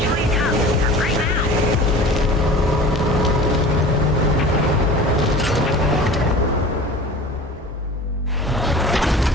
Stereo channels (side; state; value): both; normal; correlation 0.39